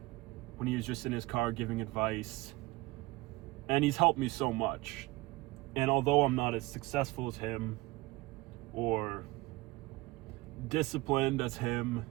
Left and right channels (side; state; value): left; quieter; 21.7 dB